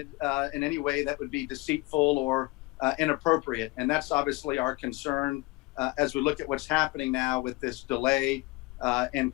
in any way that would be deceitful or inappropriate, and that's obviously our concern as we look at what's happening now with this delay in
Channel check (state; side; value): quieter; right; 22.7 dB